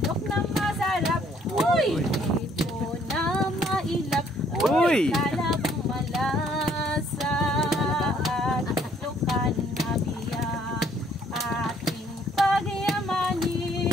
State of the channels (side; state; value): both; normal; correlation 0.64